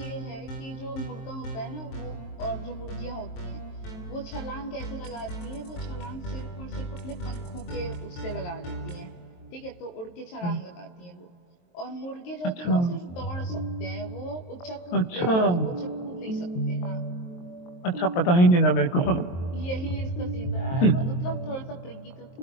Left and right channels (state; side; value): late; right; 23 ms